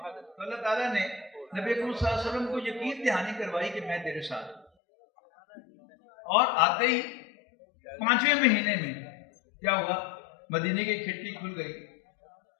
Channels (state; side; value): drops out; right; at 4.7 s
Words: اللہ تعالیٰ نے نبی اکرم صلی اللہ علیہ وسلم کو یقین دہانی کروائی کہ میں تیرے ساتھ ہوں. اور آتے ہی 5ویں مہینے میں کیا ہوا؟ مدینے کی کھڑکی کھل گئی.